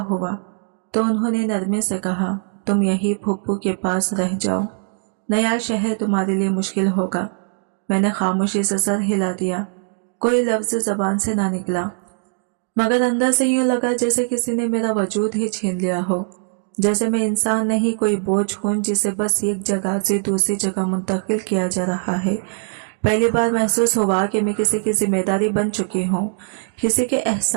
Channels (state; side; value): silent; left; 65 dB below the other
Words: हुआ तो उन्होंने नरमी से कहा, तुम यही फुप्पू के पास रह जाओ, नया शहर तुम्हारे लिए मुश्किल होगा। मैंने खामोशी से सर हिला दिया, कोई लफ्ज जबान से ना निकला, मगर अंदर से यूं लगा जैसे किसी ने मेरा वजूद ही छीन लिया हो, जैसे मैं इंसान नहीं कोई बोझ हूं जिसे बस एक जगह से दूसरी जगह मुंतकिल किया जा रहा है। पहली बार महसूस हुआ कि मैं किसी की जिम्मेदारी बन चुकी हूँ, किसी के